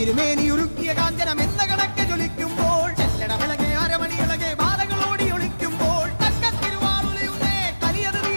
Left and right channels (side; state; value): both; inverted; correlation -1.00